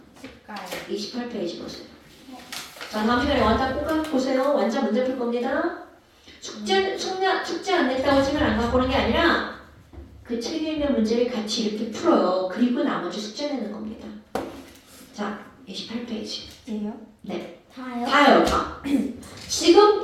색깔. 28페이지 보세요. 자 다음 시간에 완자 꼭 보세요. 완자 문제 풀 겁니다. 숙제 안 냈다고 책을 안 갖고 오는 게 아니라 그 책에 있는 문제를 같이 이렇게 풀어요. 그리고 나머지 숙제 내는 겁니다. 자 28페이지. 예요? 다요? 다요 다.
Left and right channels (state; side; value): identical; both; correlation 1.00